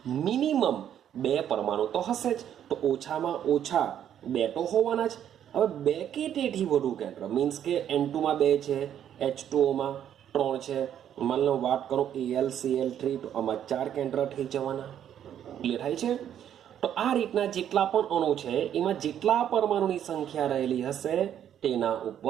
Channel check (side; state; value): left; quieter; 10.0 dB